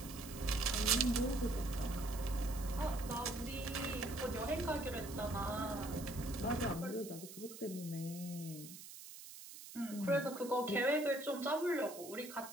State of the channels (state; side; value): noise; right; hiss, 13 dB below the sound